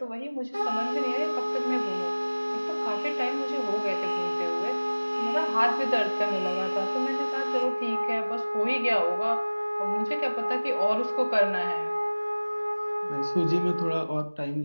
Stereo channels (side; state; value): both; inverted; correlation -1.00